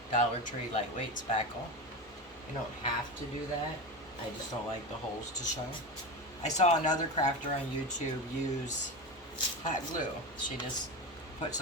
Dollar Tree lightweight spackle. You don't have to do that. I just don't like the holes to show. I saw another crafter on YouTube use hot glue. She just put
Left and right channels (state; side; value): normal; both; correlation 0.22